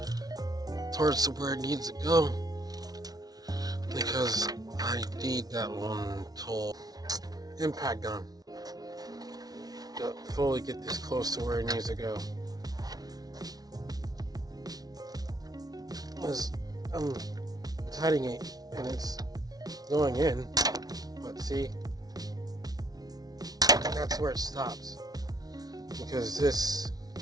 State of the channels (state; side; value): late; left; 0.19 ms